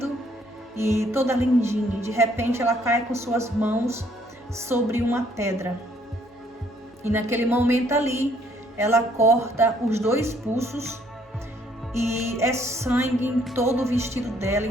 e toda lindinha, de repente ela cai com suas mãos sobre uma pedra. E naquele momento ali, ela corta os 2 pulsos e é sangue em todo o vestido dela,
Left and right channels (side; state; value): both; normal; correlation 0.65